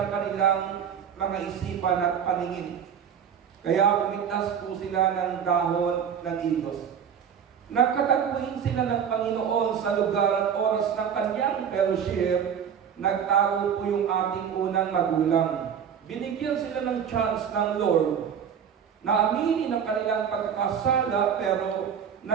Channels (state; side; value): quieter; left; 8.0 dB